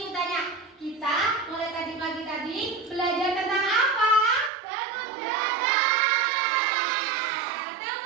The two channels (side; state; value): left; drops out; at 4.5 s